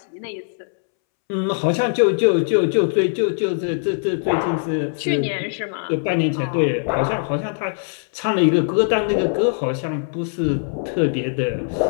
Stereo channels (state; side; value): silent; right; 65 dB below the other